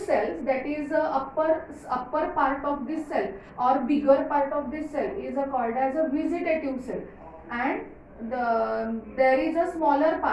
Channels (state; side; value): identical; both; correlation 1.00